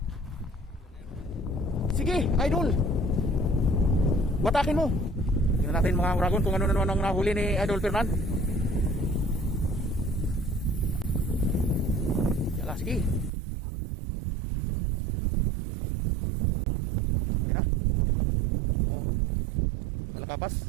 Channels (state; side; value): drops out; left; at 13.3 s